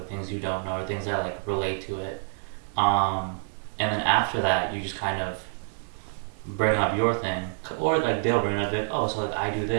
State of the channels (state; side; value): silent; left; 59 dB below the other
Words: things you don't know or things that like relate to it. And then after that, you just kind of bring up your thing, or like they'll bring it up like, oh, so like I do